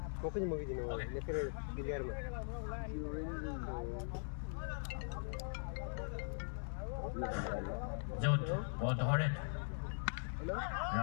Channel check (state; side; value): silent; right; digital silence